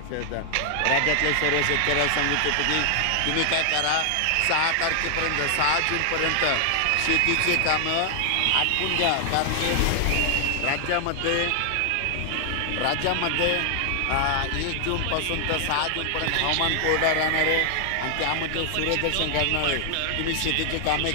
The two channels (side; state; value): both; different; correlation 0.00